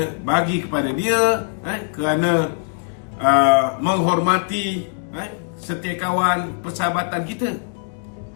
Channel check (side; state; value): right; silent; digital silence